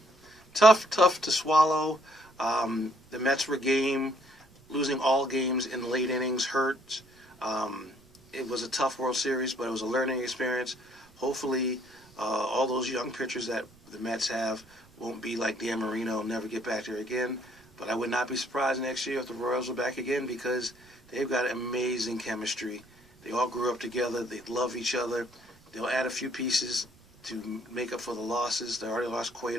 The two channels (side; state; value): right; noise; rumble, 29 dB below the sound